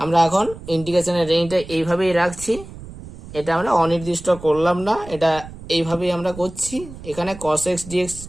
আমরা এখন ইন্টিগ্রেশনের রেঞ্জটা এইভাবেই রাখছি, এটা আমরা অনির্দিষ্ট করলাম না, এটা এইভাবেই আমরা করছি। এখানে cos x dx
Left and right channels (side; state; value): right; noise; rumble, 15 dB below the sound